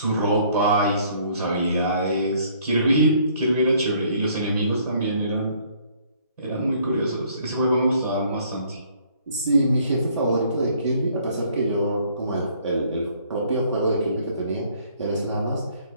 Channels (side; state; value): both; inverted; correlation -0.62